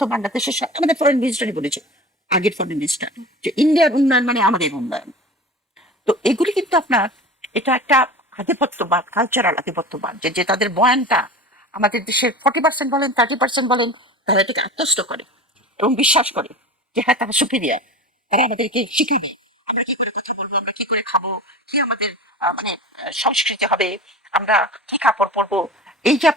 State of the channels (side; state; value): both; normal; correlation 0.34